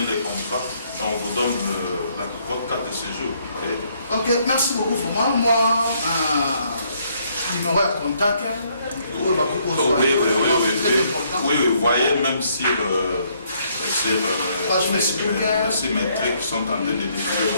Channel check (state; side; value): inverted; both; correlation -0.69